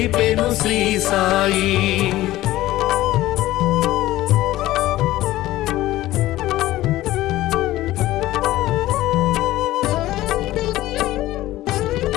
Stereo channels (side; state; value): right; quieter; 16.0 dB